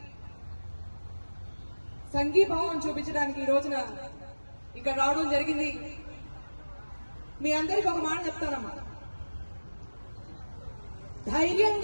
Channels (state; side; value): inverted; both; correlation -1.00